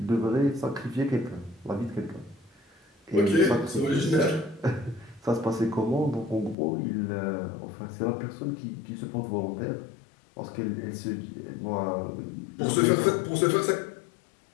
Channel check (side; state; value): right; drops out; at 6.6 s